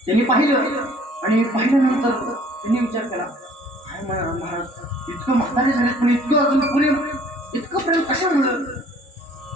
त्यांनी पाहिलं आणि पाहिल्यानंतर त्यांनी विचार केला, काय महाराज इतकं म्हातारे झाले पण इतकं अजून इतकं प्रेम कशामुळं.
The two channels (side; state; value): both; normal; correlation 0.55